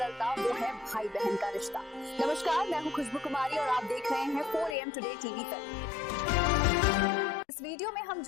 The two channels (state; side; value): drops out; right; at 4.8 s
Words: वो है भाई बहन का रिश्ता। नमस्कार, मैं हूं खुशबू कुमारी और आप देख रहे हैं 4 AM टुडे टीवी पर। इस वीडियो में हम